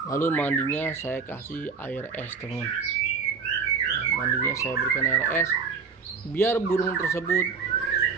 lalu mandinya saya kasih air es, teman. Ya, mandinya saya berikan air es biar burung tersebut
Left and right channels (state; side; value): quieter; left; 5.4 dB